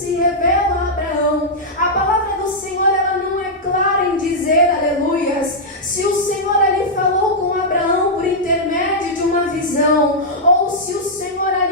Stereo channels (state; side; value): normal; both; correlation -0.07